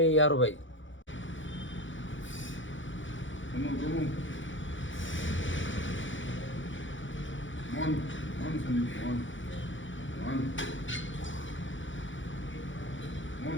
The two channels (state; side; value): late; right; 0.56 ms